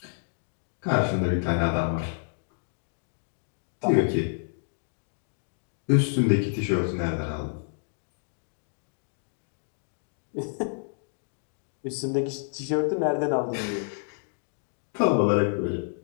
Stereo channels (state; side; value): silent; right; digital silence